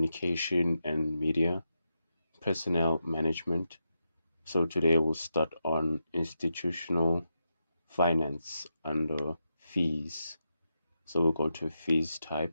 and media, personnel management. So today we'll start on institutional finance under fees. So we'll go to fees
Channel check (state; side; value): inverted; both; correlation -0.86